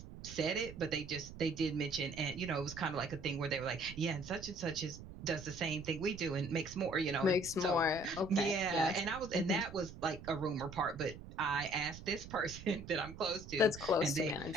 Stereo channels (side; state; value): right; noise; rumble, 14 dB below the sound